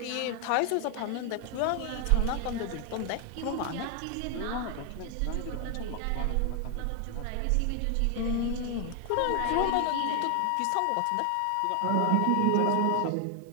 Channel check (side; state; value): both; different; correlation 0.00